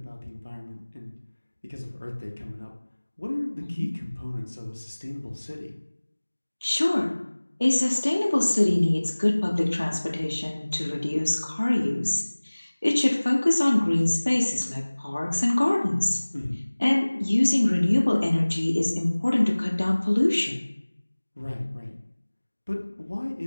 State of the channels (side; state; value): both; inverted; correlation -1.00